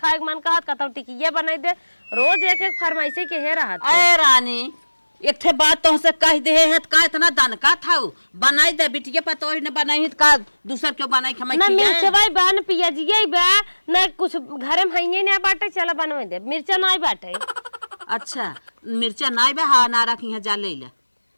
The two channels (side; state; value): both; inverted; correlation -1.00